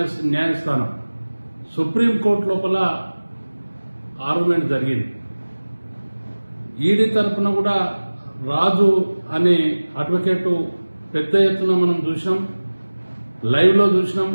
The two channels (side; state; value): both; inverted; correlation -1.00